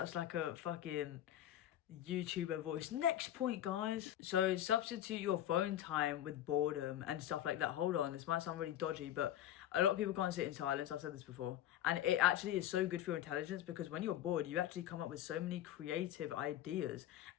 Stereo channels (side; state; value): right; quieter; 12.0 dB